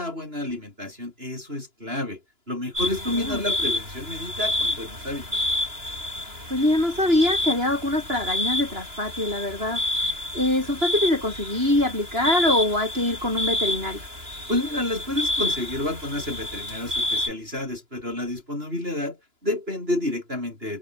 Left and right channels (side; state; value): left; late; 2.9 ms